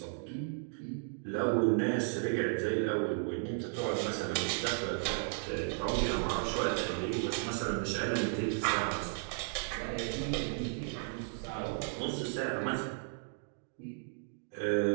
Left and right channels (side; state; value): left; silent; 55 dB below the other